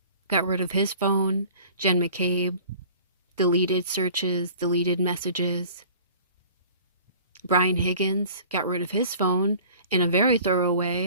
got rid of his phone. Jen McCabe, deleted searches, deleted messages. Brian Higgins got rid of his phone in a very thorough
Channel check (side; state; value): both; inverted; correlation -0.47